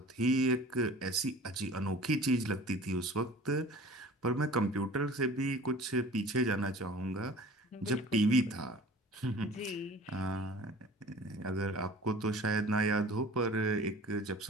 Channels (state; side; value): normal; both; correlation 0.44